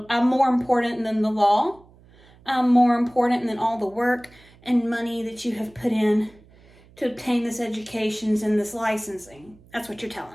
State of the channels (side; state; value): right; noise; hum, 27 dB below the sound